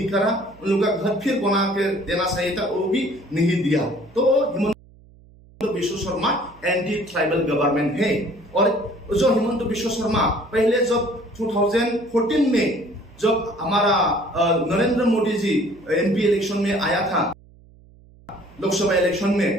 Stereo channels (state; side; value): noise; right; hum, 25 dB below the sound